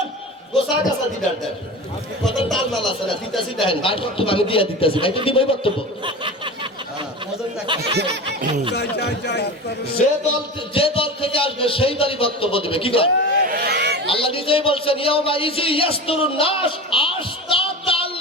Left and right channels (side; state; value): both; normal; correlation 0.30